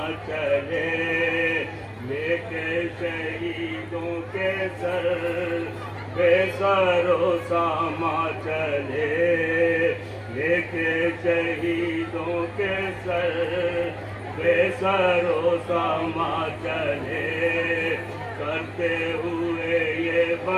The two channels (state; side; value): identical; both; correlation 1.00